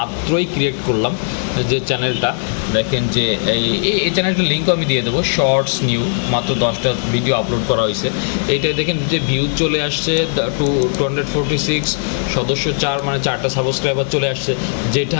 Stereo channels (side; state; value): right; silent; digital silence